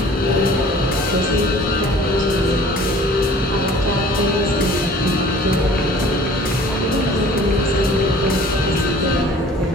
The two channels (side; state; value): both; normal; correlation 0.49